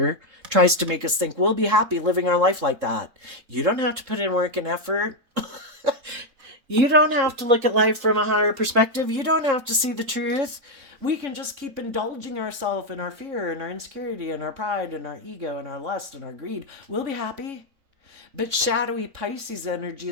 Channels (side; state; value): left; late; 3.7 ms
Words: tries to make us think we'll be happy living our life like that. You don't have to put in work and effort. You don't have to look at life from a higher perspective. You don't have to see the truth. We can just keep indulging ourselves in our fear and our insecurity and our pride and our ego and our lust and our greed. We'll be happy. But shadowy Pisces energy